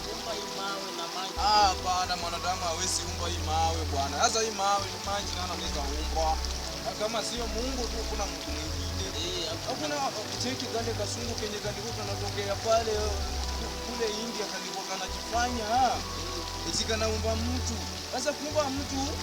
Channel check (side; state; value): both; identical; correlation 1.00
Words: kuumba hii mawe na maji. Bwana, mwanadamu hawezi umba hii mawe bwana. Sasa hii mawe ni maji nani anaweza umba? Kama sio Mungu tu kuna mtu mwingine. Hakuna cheki kale kasungu kenye kalikuwa kanatokea pale kule India kalikuwa kanajifanya eti kanaumba mtu. Sasa kuumba mtu